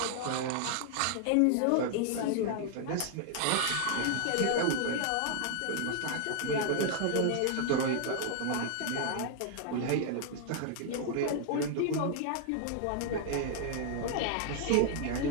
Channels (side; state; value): both; different; correlation 0.00